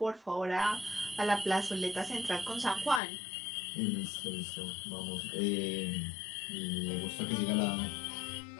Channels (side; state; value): right; drops out; at 3.0 s